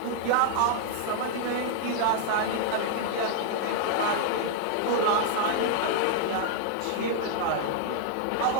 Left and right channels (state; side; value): different; both; correlation -0.01